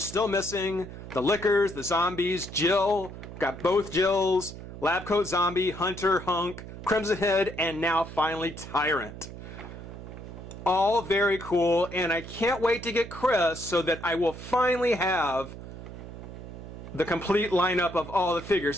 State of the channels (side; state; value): right; noise; hum, 12 dB below the sound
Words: missing, the Lickers, the Zombies, Jill, got both Jills, Lab Coat Zombie, Hunter, Hunk, Crimson Head, and now finally Tyrant. All very cool, and I can't wait to get Chris so that I will finally have the complete lineup of all the